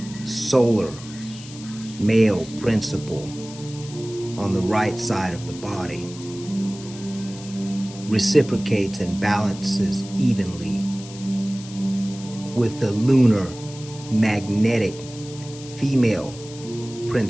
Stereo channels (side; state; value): left; noise; hiss, 16 dB below the sound